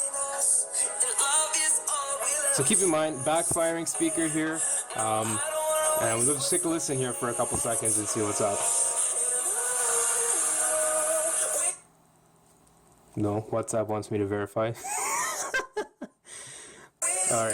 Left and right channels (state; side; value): identical; both; correlation 1.00